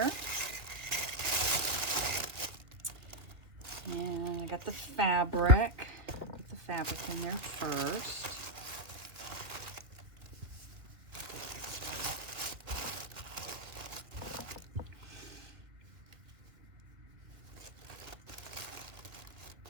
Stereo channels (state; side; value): late; left; 1.8 ms